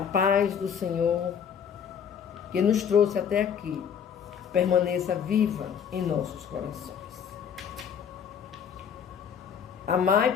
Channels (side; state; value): right; quieter; 7.6 dB